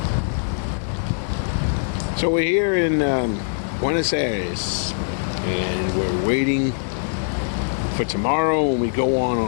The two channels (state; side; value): silent; right; 56 dB below the other